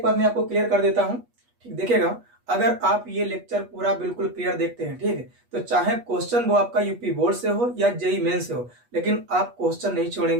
बात मैं आपको क्लियर कर देता हूँ, ठीक देखिएगा, अगर आप ये लेक्चर पूरा बिल्कुल क्लियर देखते हैं, ठीक है, तो चाहे क्वेश्चन वो आपका यूपी बोर्ड से हो या जेई मेन से हो, लेकिन आप क्वेश्चन नहीं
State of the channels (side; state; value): left; late; 8.3 ms